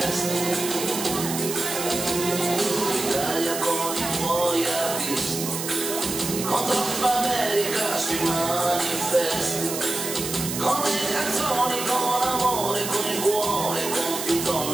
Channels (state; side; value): noise; right; hiss, 5 dB below the sound